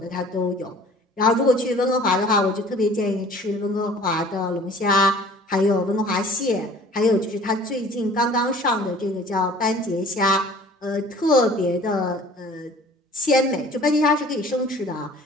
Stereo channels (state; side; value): normal; both; correlation 0.49